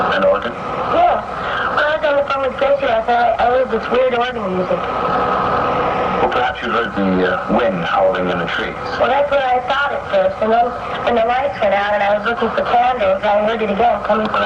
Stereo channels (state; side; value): identical; both; correlation 1.00